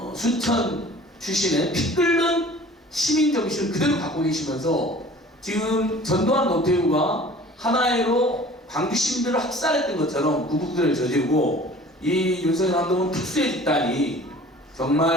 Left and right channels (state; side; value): normal; both; correlation 0.46